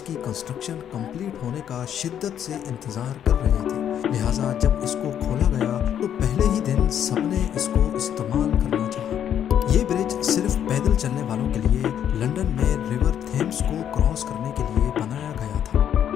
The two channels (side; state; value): right; quieter; 9.6 dB